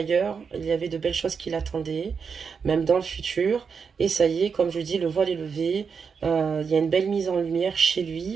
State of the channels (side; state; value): left; quieter; 5.9 dB